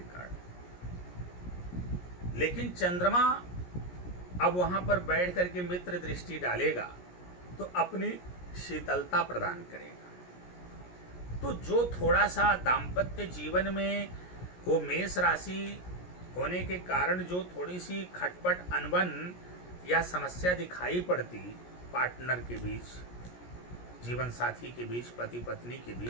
कारण। लेकिन चंद्रमा अब वहां पर बैठ करके मित्र दृष्टि डालेगा तो अपनी शीतलता प्रदान करेगा। तो जो थोड़ा सा दाम्पत्य जीवन में वो मेष राशि होने के कारण जो थोड़ी सी खटपट, अनबन या समस्या दिखाई पड़ती पार्टनर के बीच, जीवन साथी के बीच, पति पत्नी के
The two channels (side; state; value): right; late; 17 ms